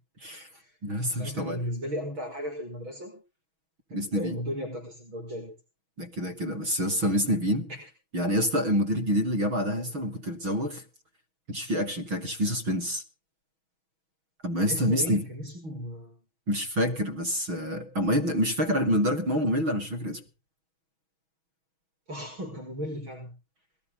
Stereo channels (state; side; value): late; left; 6.2 ms